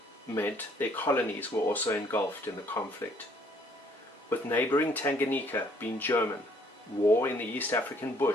meant their colonies were also engulfed in the conflict. With neighboring Tanganyika being German, war in the East African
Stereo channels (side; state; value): both; normal; correlation 0.63